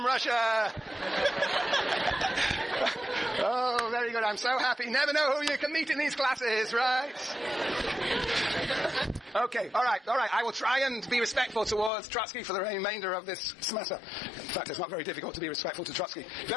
Russia. Oh, very good. I'm so happy. Never know who you can meet in these classes, right? Okay, all right. I will try and be respectful towards Trotsky for the remainder of this semester. In fact, it's not very difficult to be respectful to Trotsky.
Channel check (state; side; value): drops out; right; at 11.9 s